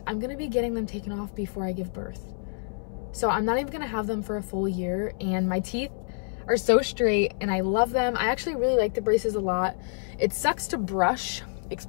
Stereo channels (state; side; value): silent; right; 60 dB below the other